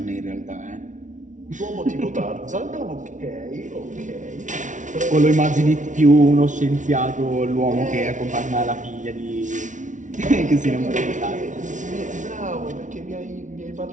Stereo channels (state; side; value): late; left; 0.37 ms